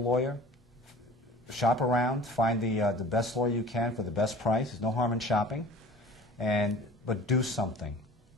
Shop around. Find the best lawyer you can for the best price. There's no harm in shopping. But do something.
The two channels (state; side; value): normal; both; correlation 0.44